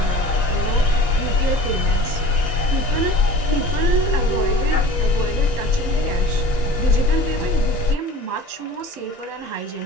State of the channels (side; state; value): left; late; 1.9 ms